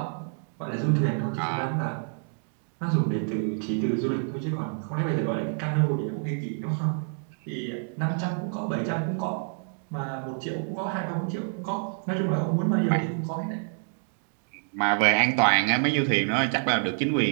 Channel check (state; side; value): silent; left; 60 dB below the other